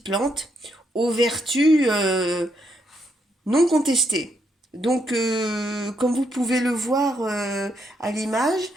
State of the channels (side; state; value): both; normal; correlation 0.77